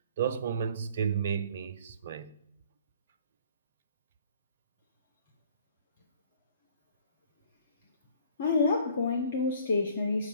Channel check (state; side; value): inverted; both; correlation -0.54